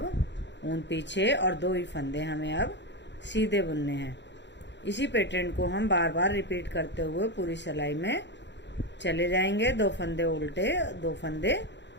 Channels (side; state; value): right; late; 0.52 ms